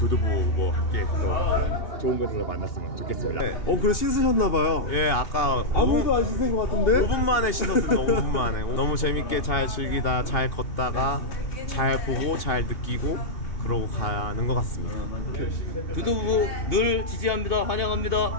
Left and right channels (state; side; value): late; right; 2.8 ms